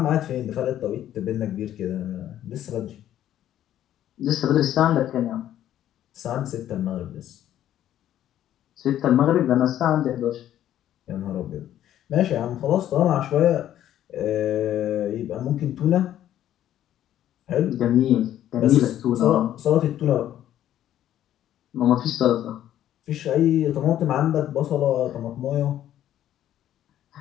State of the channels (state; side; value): quieter; right; 11.8 dB